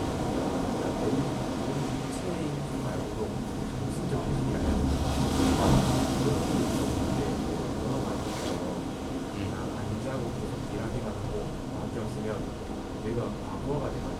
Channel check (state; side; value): identical; both; correlation 1.00